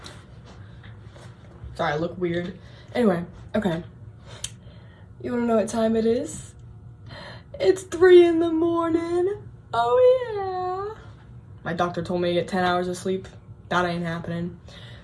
Sorry, I look weird. Anyway, okay. You wanna know what time it is? It's 3 in the morning. Oh yeah. My doctor told me to get 10 hours of sleep. That ain't happening.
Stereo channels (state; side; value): identical; both; correlation 1.00